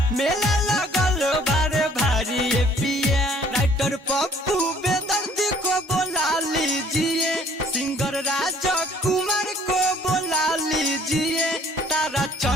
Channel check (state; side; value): normal; both; correlation 0.58